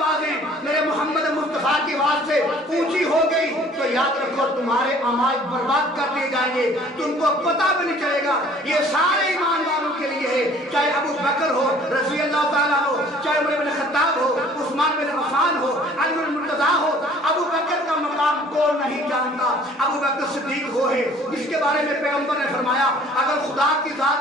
मेरे मोहम्मद मुस्तफ़ा की आवाज से ऊंची हो गई तो याद रखो तुम्हारे अमाल बर्बाद कर दिए जाएंगे, तुमको पता भी नहीं चलेगा। ये सारे ईमान वालों के लिए है, चाहे अबू बकर हो रज़ी अल्लाह ताला हो, चाहे उमर बिन खत्ताब हो, उस्मान बिन अफ़्फ़ान हो, अली बिन मुर्तज़ा हो। अबू बकर का मकाम कौन नहीं जानता? अबू बकर सिद्दीक वो है जिसके बारे में पैगंबर ने फरमाया अगर खुदा की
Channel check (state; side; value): normal; both; correlation 0.53